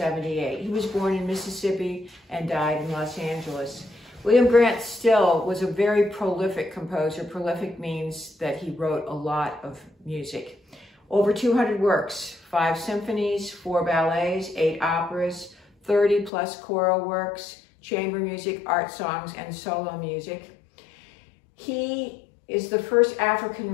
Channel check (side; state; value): right; drops out; at 16.3 s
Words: He was born in Mississippi and died in Los Angeles. William Grant Still was a very prolific composer. Prolific means that he wrote a lot of music. Over 200 works, 5 symphonies, 4 ballets, 8 operas, 30 plus choral works, chamber music, art songs, and solo music. He is the first African